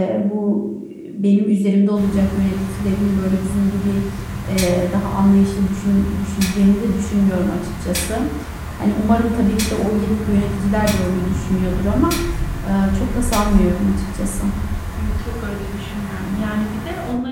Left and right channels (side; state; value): both; identical; correlation 1.00